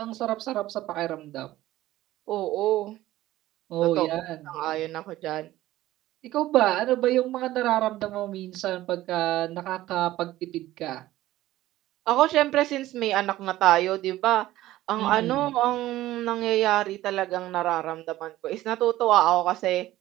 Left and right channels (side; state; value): left; quieter; 15.5 dB